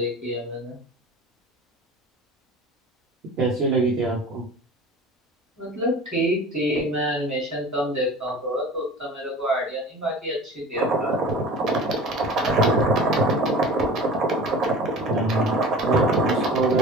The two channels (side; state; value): both; normal; correlation 0.39